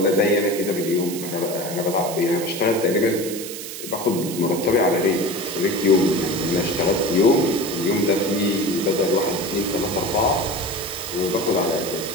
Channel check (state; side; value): noise; right; hiss, 9 dB below the sound